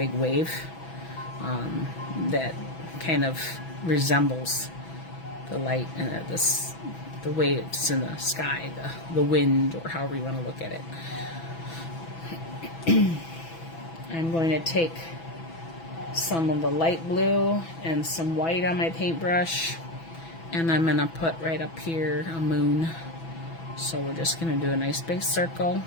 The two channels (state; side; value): late; right; 6.1 ms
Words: wave that kind of resembles the light and the waves in the sky, the wind, or however you want to look at it. I'm going to take some of the light blue and some white on my paintbrush, and I'm going to put right up here a moon. So we're just going to do a nice big circle.